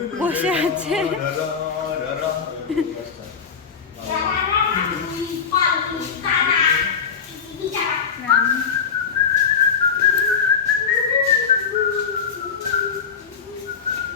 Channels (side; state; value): right; quieter; 6.4 dB